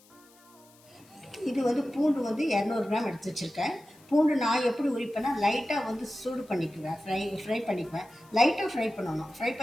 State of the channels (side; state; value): left; noise; hiss, 28 dB below the sound